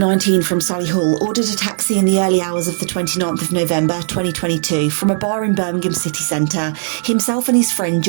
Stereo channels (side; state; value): left; silent; digital silence